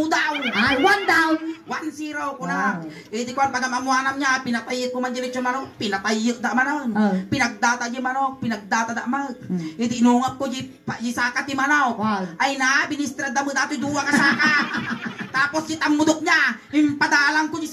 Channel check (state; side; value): identical; both; correlation 1.00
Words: daw. Ay, 1 down. 1-0 ko na. Eh di kwan, pagamamuanam niya, pinatayik ko man dilit yung manok, pinatayik da manaw. Pinagdata di manok, pinagdata da manok. Eh di inungap ko di saka ti manaw. Ay na, binistrad da mo dati duwa ka saka. Tapos si tamudok niya, impadalang ko di